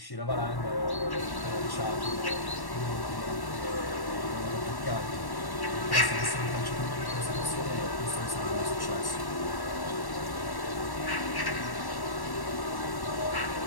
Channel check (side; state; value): right; late; 1.1 ms